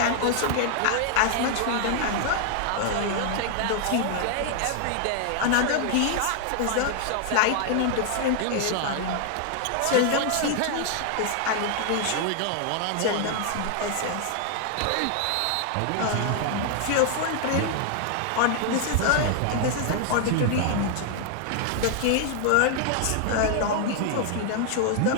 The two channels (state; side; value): different; both; correlation 0.00